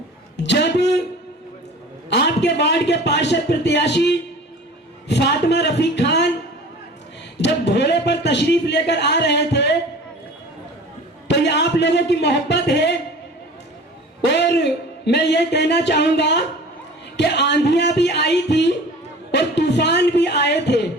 जब आपके वार्ड के पार्षद प्रत्याशी फातिमा रफीक खान जब घोड़े पर तशरीफ लेकर आ रहे थे तो ये आप लोगों की मोहब्बत है। और मैं ये कहना चाहूंगा कि आंधियां भी आई थी और तूफान भी आए थे,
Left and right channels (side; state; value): both; normal; correlation 0.41